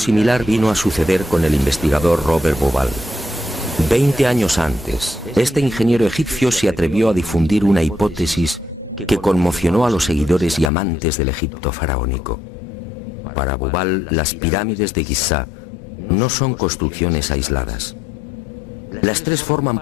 vino a suceder con el investigador Robert Bauval. 20 años antes, este ingeniero egipcio se atrevió a difundir una hipótesis que conmocionó a los seguidores y amantes del Egipto faraónico. Para Bauval, las pirámides de Giza no son construcciones aisladas. Las tres forman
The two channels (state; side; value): drops out; right; at 10.7 s